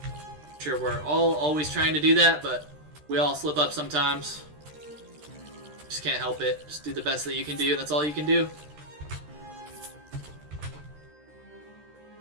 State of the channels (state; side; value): late; left; 13 ms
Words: I'm sure we're all always trying to do that, but we all slip up sometimes. Just can't help it. Just do the best that you can do, and that's all you can do.